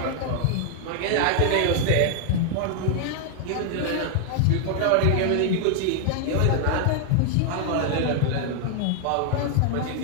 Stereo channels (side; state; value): both; different; correlation 0.00